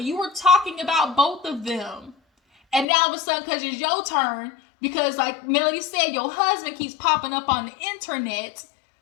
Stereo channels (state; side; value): drops out; right; at 2.9 s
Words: You were talking about both of them. And now all of a sudden, because it's your turn, because like Melody said, your husband keeps popping up on the internet,